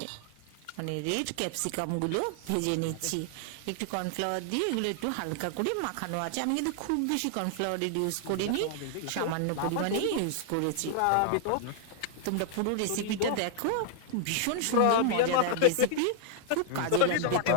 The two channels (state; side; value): different; both; correlation -0.01